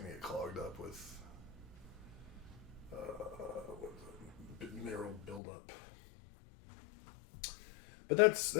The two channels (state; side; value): drops out; right; at 5.4 s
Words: get clogged up with mineral buildup. But